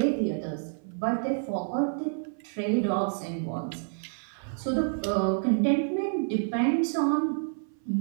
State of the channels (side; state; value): left; silent; 59 dB below the other